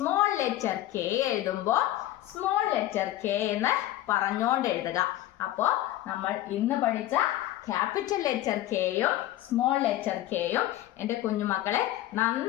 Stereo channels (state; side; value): quieter; right; 14.4 dB